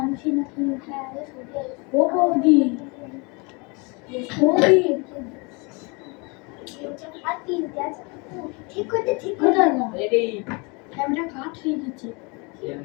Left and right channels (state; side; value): quieter; right; 29.9 dB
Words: নাকি ও বৌদি বৌদি ঠিক করতে ঠিক করে না রেডি ক্যামেরা কাট হয়ে গেছে